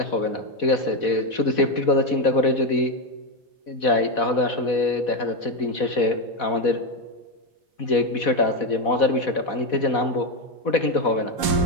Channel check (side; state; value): right; late; 4.1 ms